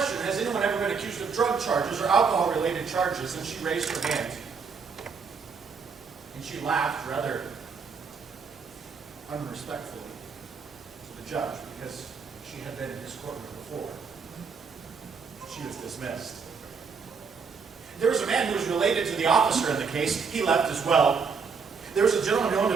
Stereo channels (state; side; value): quieter; left; 5.5 dB